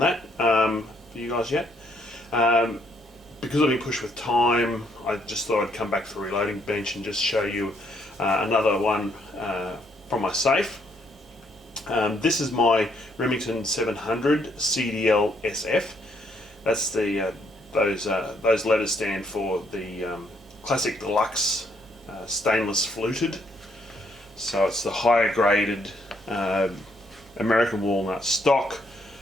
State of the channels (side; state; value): both; normal; correlation 0.71